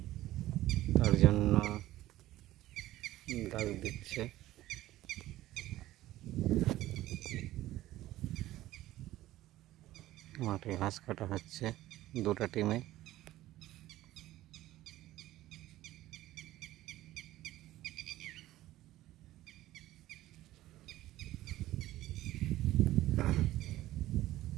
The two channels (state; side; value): quieter; left; 15.4 dB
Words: তার জন্য দাগ দিচ্ছে। মাঠে ঘাস কাটা হচ্ছে দুটো টিমে।